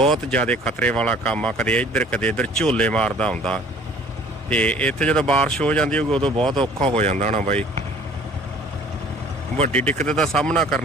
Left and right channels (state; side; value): normal; both; correlation 0.52